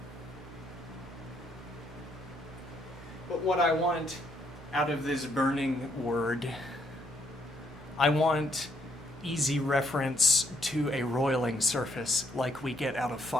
But what I want out of this burning word, I want easy reference to a roiling surface like we get out of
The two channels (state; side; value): normal; both; correlation 0.72